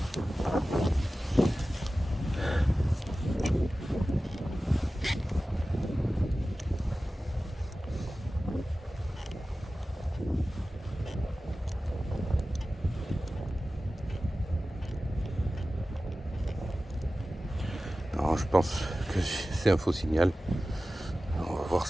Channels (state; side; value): normal; both; correlation 0.95